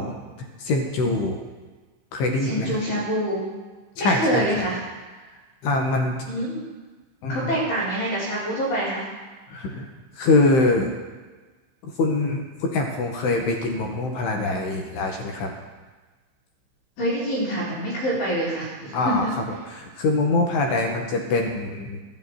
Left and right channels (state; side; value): late; right; 15 ms